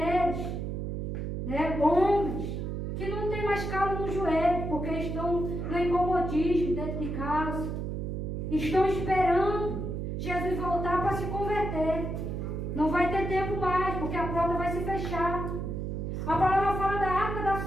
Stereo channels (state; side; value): noise; right; hum, 3 dB below the sound